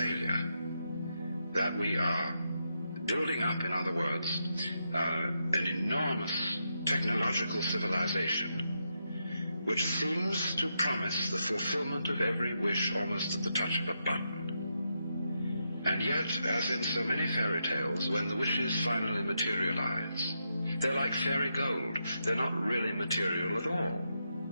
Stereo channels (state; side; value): inverted; both; correlation -0.83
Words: that we are building up, in other words, an enormous technological civilization which seems to promise the fulfillment of every wish almost at the touch of a button. And yet, as in so many fairy tales, when the wishes finally materialize, they're like fairy gold. They're not really material at all.